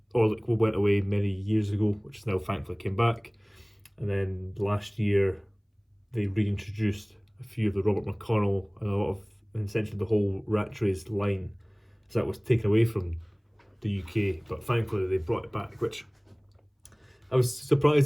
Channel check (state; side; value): identical; both; correlation 1.00